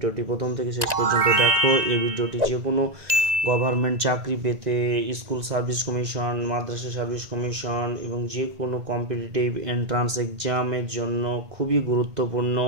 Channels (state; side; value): late; left; 1.9 ms